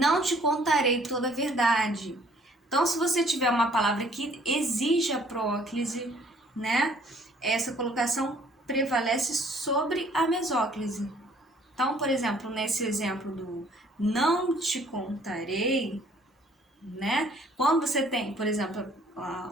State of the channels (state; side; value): normal; both; correlation 0.59